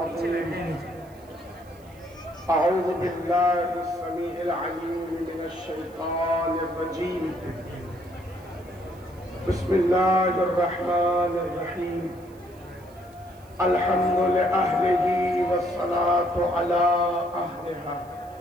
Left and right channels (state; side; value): noise; right; hiss, 29 dB below the sound